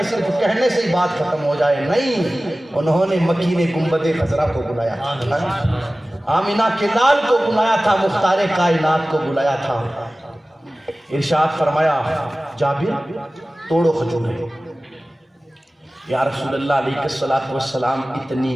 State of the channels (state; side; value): normal; both; correlation 0.97